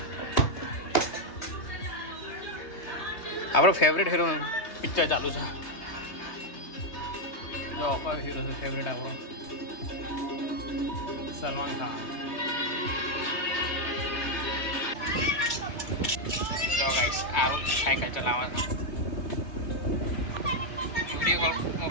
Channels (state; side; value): late; right; 3.2 ms